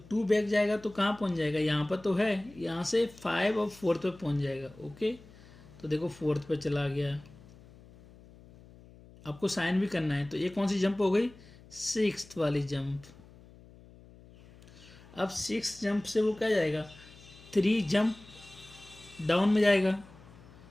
2 बैक जाएगा तो कहाँ पहुँच जाएगा, यहाँ पर तो है, यहाँ से 5 और 4th पे पहुँच जाएगा, ओके। तो देखो 4th पे चला गया, आपको साइन भी करना है। तो ये कौन सी जंप हो गई, 6th वाली जंप। अब 6th जंप से वो क्या जाएगा, 3 जंप डाउन में जाएगा।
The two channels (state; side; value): noise; left; hum, 22 dB below the sound